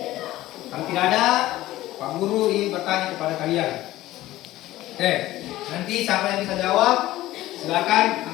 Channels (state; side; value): quieter; right; 16.0 dB